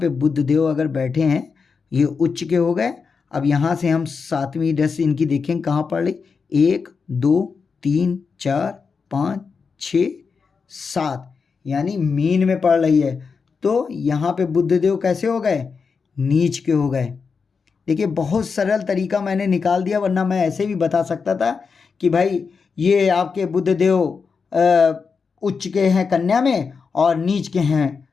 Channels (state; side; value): quieter; right; 5.3 dB